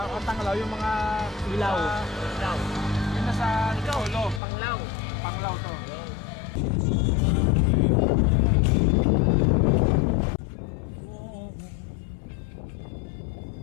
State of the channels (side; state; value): right; drops out; at 4.4 s